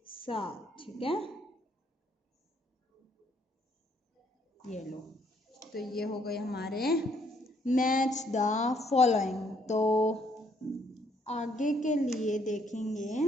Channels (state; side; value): normal; both; correlation 0.68